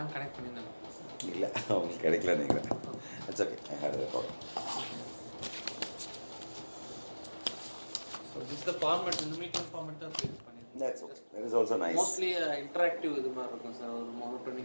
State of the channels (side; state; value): both; inverted; correlation -1.00